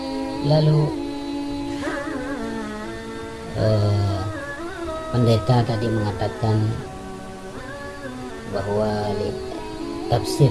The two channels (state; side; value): identical; both; correlation 1.00